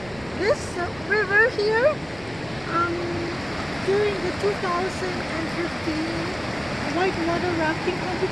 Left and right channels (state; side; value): noise; right; rumble, 20 dB below the sound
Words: This river here, during the 2015 whitewater rafting